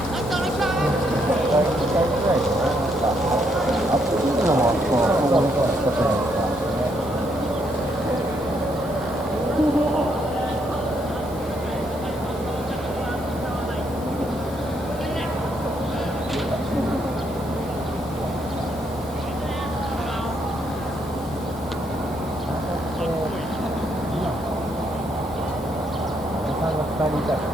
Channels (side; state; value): both; normal; correlation 0.74